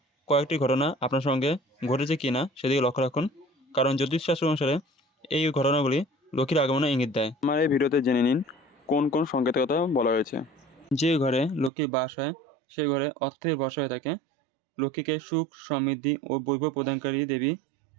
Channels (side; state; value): left; drops out; at 11.7 s